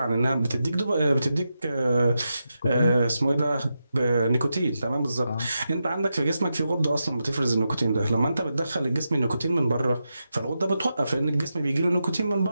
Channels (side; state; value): both; inverted; correlation -0.88